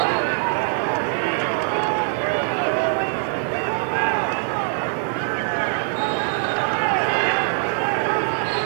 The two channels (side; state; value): left; silent; 55 dB below the other